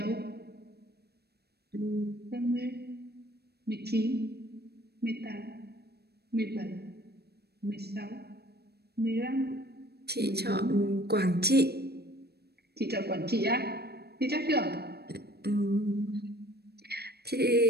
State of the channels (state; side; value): late; left; 0.47 ms